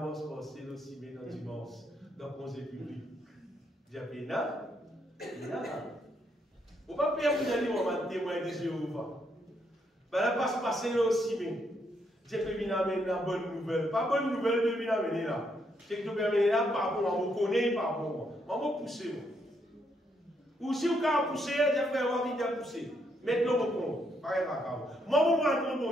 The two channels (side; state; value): both; normal; correlation 0.75